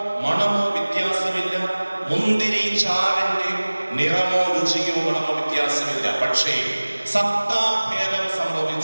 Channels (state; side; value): inverted; both; correlation -1.00